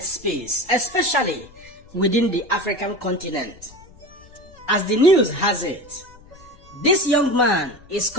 space, especially within the African continent. As the news has it, this young man is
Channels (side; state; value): left; noise; rumble, 24 dB below the sound